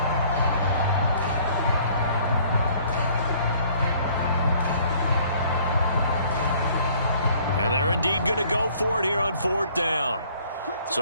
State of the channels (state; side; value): inverted; both; correlation -0.58